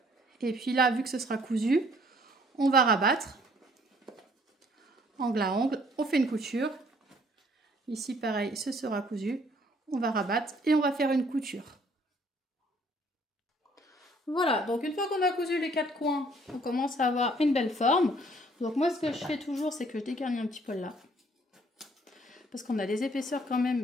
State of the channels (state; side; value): normal; both; correlation 0.61